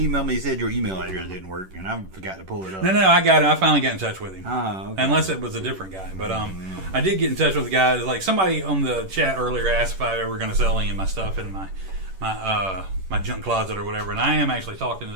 me. He said your email address didn't work, and I forgot to pull it up. No, I got it. I finally got in touch with him. Okay. Unless it was a different guy, but I did get in touch with the guy. Like somebody on the chat earlier asked if I ever going to sell any of my stuff in my my junk closet or whatever. And I am actually talking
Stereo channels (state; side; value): late; left; 11 ms